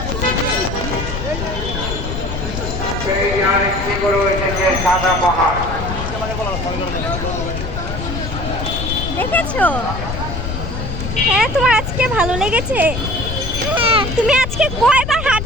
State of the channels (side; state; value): left; noise; rumble, 5 dB below the sound